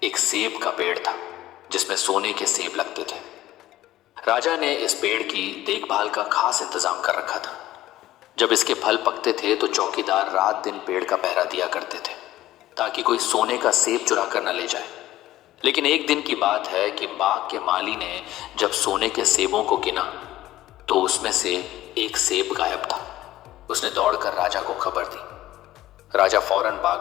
एक सेब का पेड़ था जिसमें सोने के सेब लगते थे। राजा ने इस पेड़ की देखभाल का खास इंतजाम कर रखा था। जब इसके फल पकते थे तो चौकीदार रात दिन पेड़ का पहरा दिया करते थे ताकि कोई सोने का सेब चुरा कर न ले जाए। लेकिन एक दिन की बात है कि बाग के माली ने जब सोने के सेबों को गिना तो उसमें से एक सेब गायब था। उसने दौड़कर राजा को खबर दी। राजा फौरन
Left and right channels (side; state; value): right; quieter; 15.0 dB